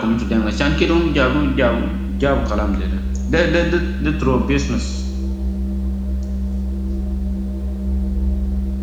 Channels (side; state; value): both; identical; correlation 1.00